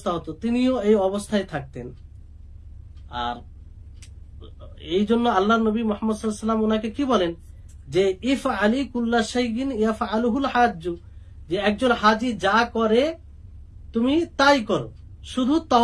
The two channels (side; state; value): both; identical; correlation 1.00